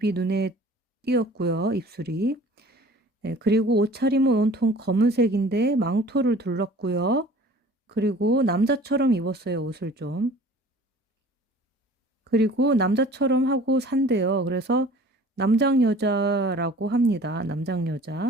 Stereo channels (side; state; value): both; normal; correlation 0.47